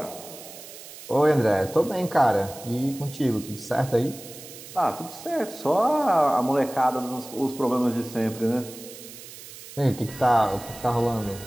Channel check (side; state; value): right; noise; hiss, 15 dB below the sound